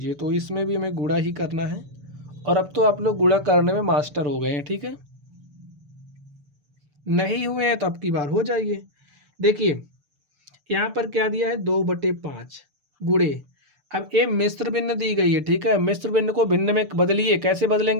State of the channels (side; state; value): left; late; 6.9 ms